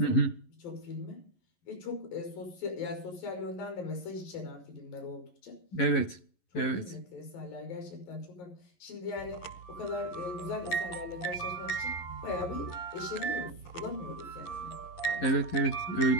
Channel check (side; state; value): right; late; 11 ms